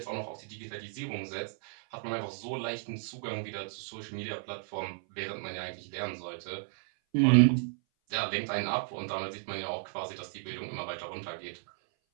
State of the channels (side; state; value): left; silent; 55 dB below the other